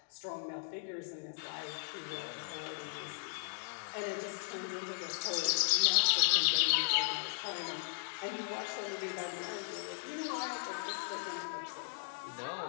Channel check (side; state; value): right; silent; digital silence